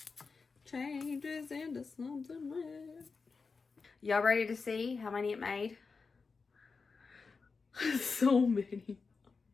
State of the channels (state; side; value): quieter; right; 4.6 dB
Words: changes into something red. Y'all ready to see how many it made? So many.